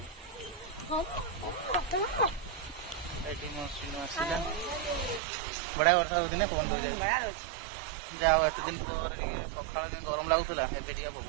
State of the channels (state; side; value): drops out; left; at 5.2 s